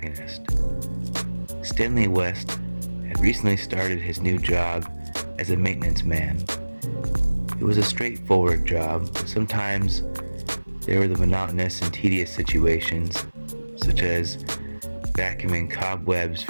Stanley West had recently started his new job as a maintenance man. It was a straightforward job, but sometimes there were the monotonous and tedious situations, such as vacuuming cobwebs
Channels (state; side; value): inverted; both; correlation -1.00